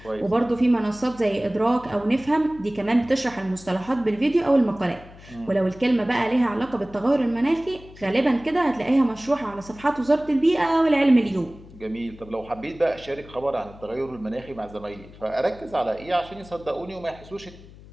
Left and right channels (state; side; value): noise; left; hum, 20 dB below the sound